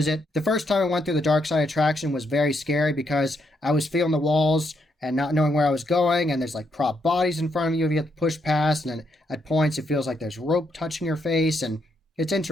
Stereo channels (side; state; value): both; normal; correlation 0.77